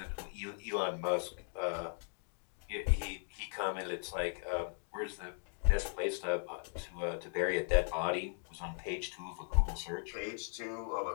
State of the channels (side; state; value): right; silent; 53 dB below the other